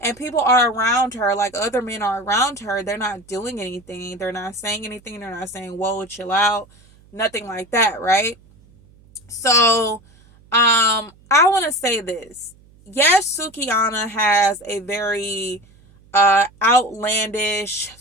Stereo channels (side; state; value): right; noise; hum, 28 dB below the sound